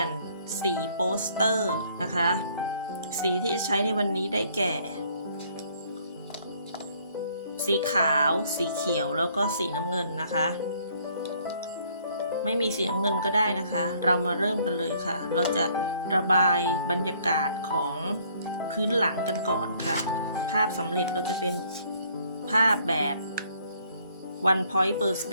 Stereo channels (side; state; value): both; inverted; correlation -0.63